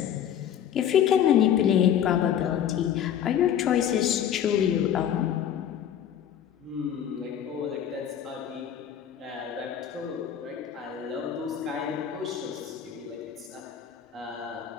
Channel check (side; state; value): right; quieter; 9.6 dB